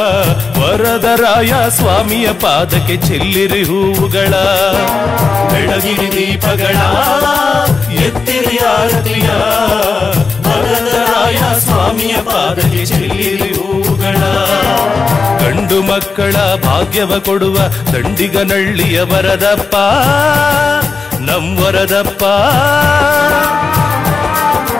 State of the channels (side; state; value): right; quieter; 4.6 dB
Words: ವರದರಾಯ ಸ್ವಾಮಿಯ ಪಾದಕ್ಕೆ ಚೆಲ್ಲಿರಿ ಹೂವುಗಳ. ಬೆಳಗಿರಿ ದೀಪಗಳ ಎತ್ತಿರಿ ಆರತಿಯ, ವರದರಾಯ ಸ್ವಾಮಿಯ ಪಾದಕ್ಕೆ ಚೆಲ್ಲಿರಿ ಹೂವುಗಳ. ಗಂಡು ಮಕ್ಕಳ ಭಾಗ್ಯವ ಕೊಡುವ ದಂಡಿಗನಳ್ಳಿಯ ವರದಪ್ಪ, ನಮ್ಮೊರದಪ್ಪ.